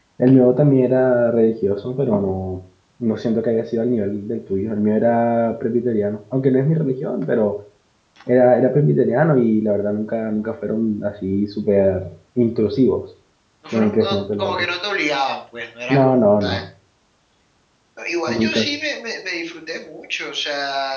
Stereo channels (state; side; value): identical; both; correlation 1.00